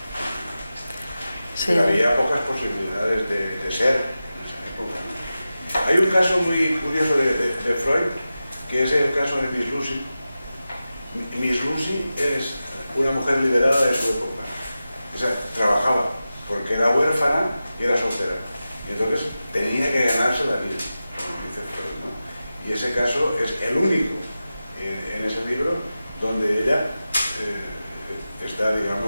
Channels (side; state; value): both; inverted; correlation -0.94